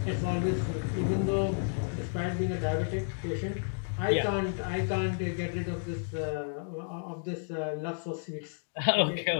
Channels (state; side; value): silent; right; digital silence